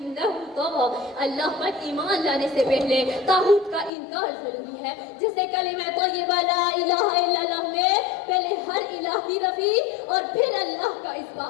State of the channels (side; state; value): right; drops out; at 3.9 s